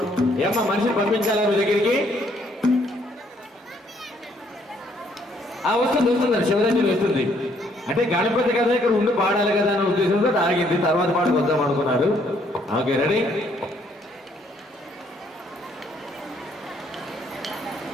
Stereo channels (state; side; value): normal; both; correlation 0.67